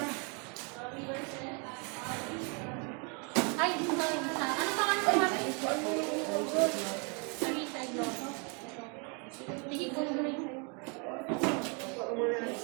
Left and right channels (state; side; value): quieter; left; 34.8 dB